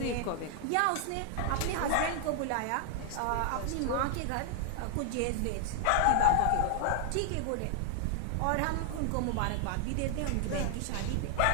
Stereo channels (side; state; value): both; different; correlation 0.00